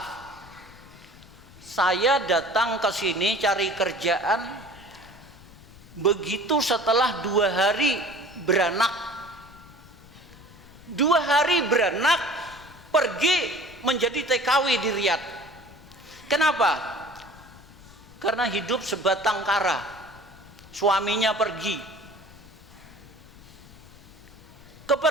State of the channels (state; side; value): noise; left; rumble, 21 dB below the sound